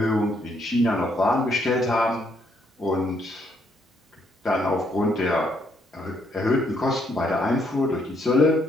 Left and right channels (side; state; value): both; normal; correlation 0.72